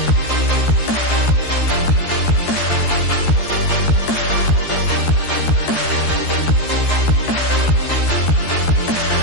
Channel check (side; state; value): right; late; 13 ms